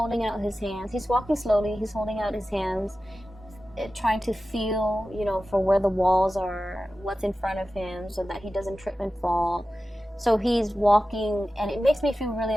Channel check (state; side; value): normal; both; correlation 0.94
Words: out his hands. He's walking slowly, he's holding out his hands, trying to feel, for where the walls are, what's in front of him, so that he doesn't trip and fall. So he's walking, and it makes me feel really